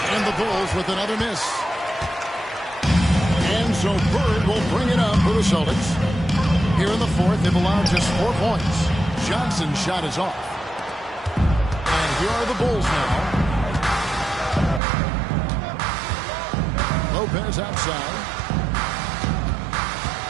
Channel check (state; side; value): drops out; left; at 14.8 s